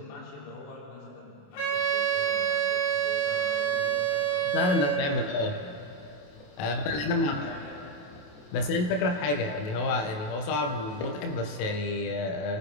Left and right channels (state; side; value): late; right; 28 ms